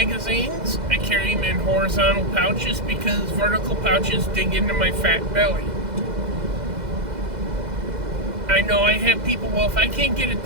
I carry them in horizontal pouches because vertical pouches dig into my fat belly. I know I have people, well, if I can't get it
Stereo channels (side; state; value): left; late; 2.0 ms